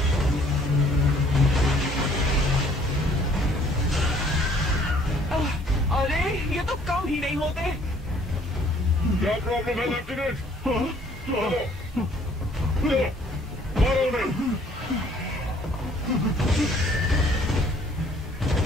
अरे ये तो कम ही नहीं होते। क्या प्रॉब्लम है लेफ्टिनेंट? चलो, मारो उन्हें।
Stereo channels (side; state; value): both; normal; correlation 0.59